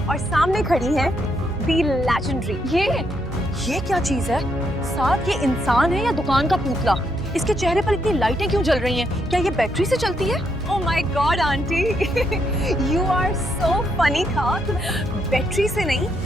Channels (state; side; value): normal; both; correlation 0.77